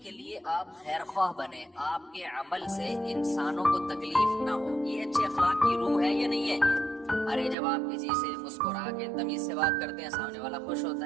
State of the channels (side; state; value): left; drops out; at 7.6 s